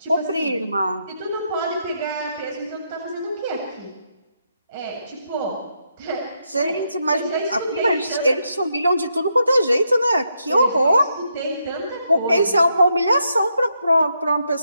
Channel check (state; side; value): inverted; both; correlation -0.80